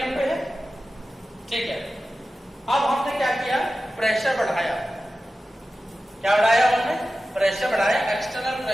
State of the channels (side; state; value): both; normal; correlation 0.94